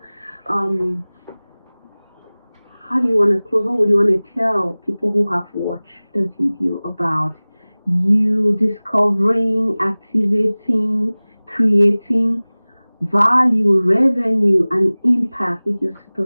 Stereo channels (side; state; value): both; inverted; correlation -0.99